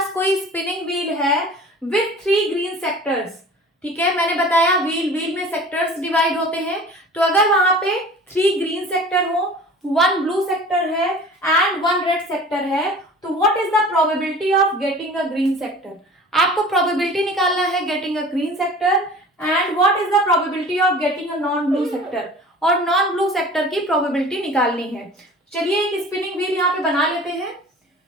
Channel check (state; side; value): normal; both; correlation 0.42